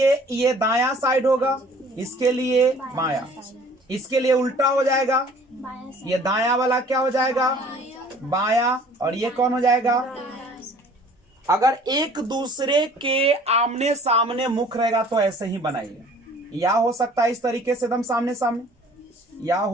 ये दायां साइड होगा, इसके लिए बायां, इसके लिए उल्टा हो जाएगा। ये दायां वाला क्या हो जाएगा? बायां, और ये कौन हो जाएगा? अगर एक दूसरे के आमने सामने मुख रहेगा तो ऐसे ही बनाइए। या हो सकता है इस तरीके से एकदम सामने सामने, या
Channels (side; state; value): both; normal; correlation 0.52